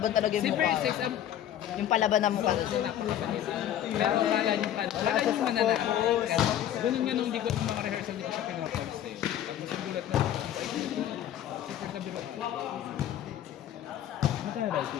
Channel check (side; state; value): right; quieter; 11.2 dB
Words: talaga Si yung mukha. Princess, ang Yung palaban na mukha. napakapalit. Pero akala niyo mananakit. Ganun nga nung di ko mga rehearsal, di ko siya pinapansin. Tapos yung gulat na ako, ay, super kabiro. Magkano ba ito?